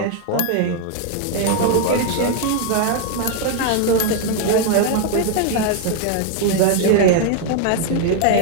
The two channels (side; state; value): both; different; correlation 0.00